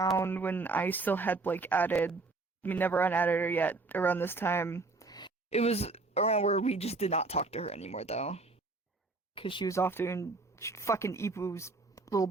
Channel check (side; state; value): left; quieter; 3.6 dB